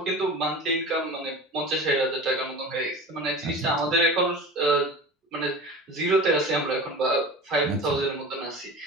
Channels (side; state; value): both; normal; correlation 0.34